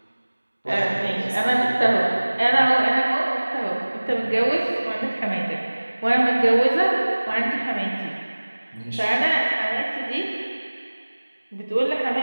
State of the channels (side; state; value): both; inverted; correlation -1.00